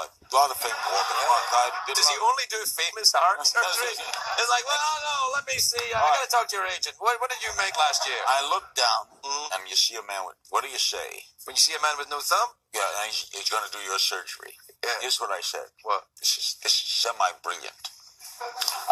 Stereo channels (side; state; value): both; identical; correlation 1.00